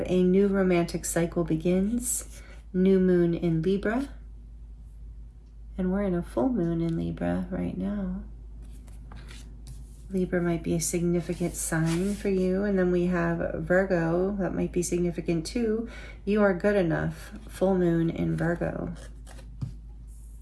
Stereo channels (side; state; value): both; identical; correlation 1.00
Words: a new romantic cycle begins. New moon in Libra. And we're in a full moon in Libra right now. Libra might be a significant sign for you. And then we have Virgo, that might be significant too. You are good enough. Full moon in Virgo.